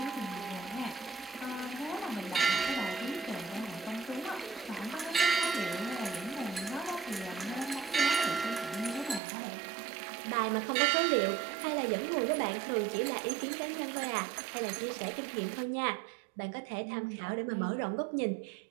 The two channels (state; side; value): drops out; left; at 9.2 s